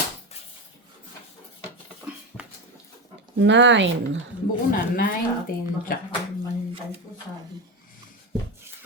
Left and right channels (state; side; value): normal; both; correlation 0.17